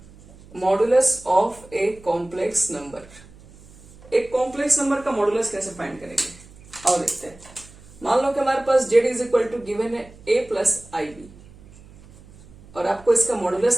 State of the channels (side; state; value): right; noise; hum, 23 dB below the sound